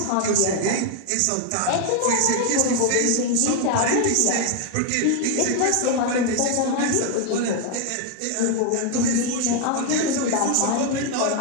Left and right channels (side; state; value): both; different; correlation 0.01